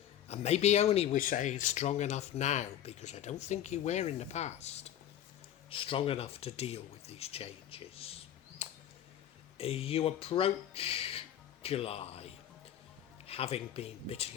And maybe only we're saying strong enough now because I don't think you were in the past. Strong enough to deal with these changes. You approach July having been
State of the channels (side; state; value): right; quieter; 11.0 dB